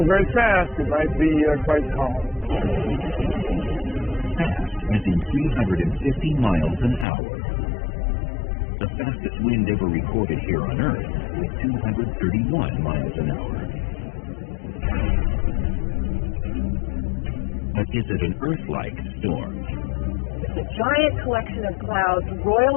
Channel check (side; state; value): right; drops out; at 7.1 s